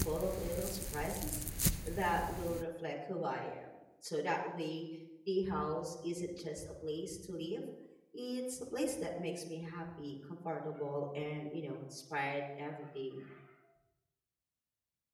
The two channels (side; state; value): both; identical; correlation 1.00